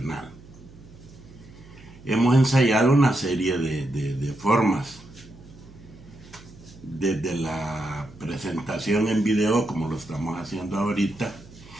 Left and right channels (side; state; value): right; noise; hum, 21 dB below the sound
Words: Hemos ensayado una serie de formas, desde la presentación en video como lo estamos haciendo ahorita,